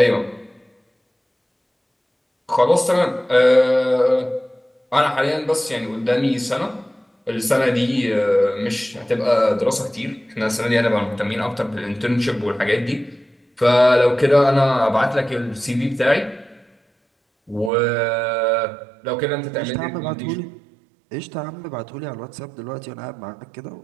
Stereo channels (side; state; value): left; drops out; at 17.7 s